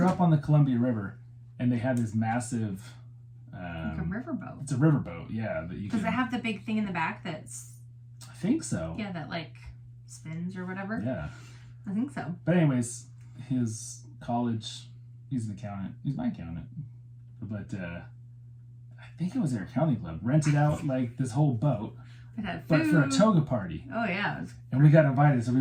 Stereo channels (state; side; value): identical; both; correlation 1.00